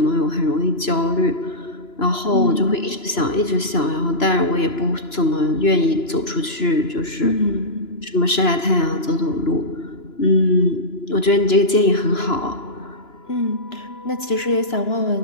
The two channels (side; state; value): right; late; 2.9 ms